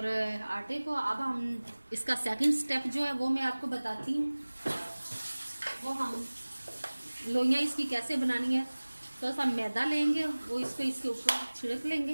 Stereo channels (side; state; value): both; inverted; correlation -1.00